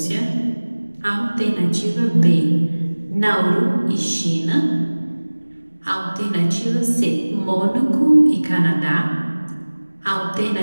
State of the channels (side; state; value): both; inverted; correlation -1.00